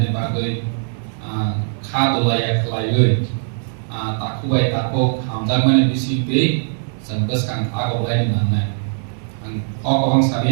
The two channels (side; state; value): left; silent; digital silence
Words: bagai kado layak layui takuai tako hamzak mana bisi be sen bus kang ago layani nanai kok bang